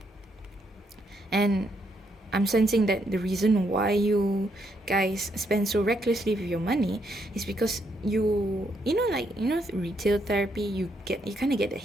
And I'm sensing that the reason why you guys spend so recklessly with your money is because retail therapy, you kind of get a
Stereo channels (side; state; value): both; normal; correlation 0.76